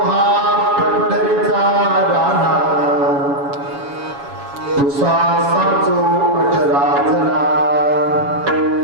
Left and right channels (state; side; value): late; left; 7.2 ms